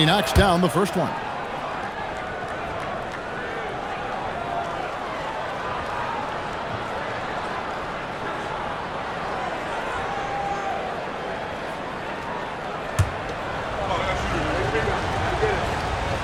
knocks down the first one.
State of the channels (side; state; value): both; identical; correlation 1.00